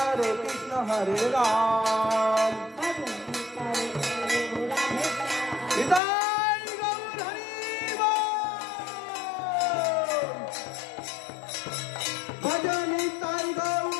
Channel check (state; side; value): drops out; right; at 6.0 s